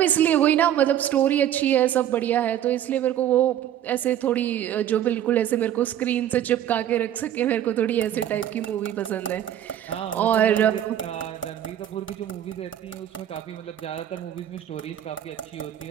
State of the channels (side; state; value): left; quieter; 11.1 dB